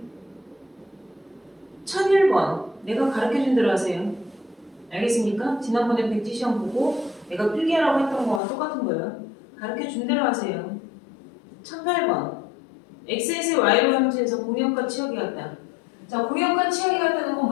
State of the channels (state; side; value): drops out; right; at 8.4 s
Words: 1001번 내가 가르쳐준 대로 하세요. 알겠습니까? 지난번에 백지 시험 보고 내가 필기하라고 했던 거와 똑같은 거예요. 가르쳐준 대로 하세요. 1008번 x에서 y로 함수에서 공역과 치역이 같다. 자 공역과 치역이 같다는 건